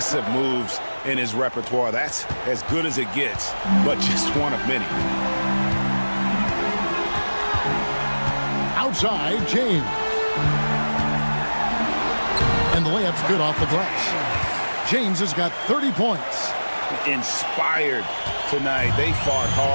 moves in his repertoire. That's as good as it gets, but just one of many. Outside, James. And the layup's good off the glass. James has got 30 points. Inspired tonight. They fought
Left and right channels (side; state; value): both; inverted; correlation -1.00